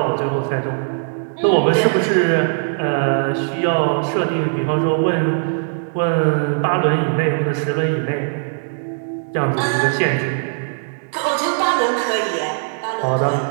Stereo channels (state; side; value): silent; left; digital silence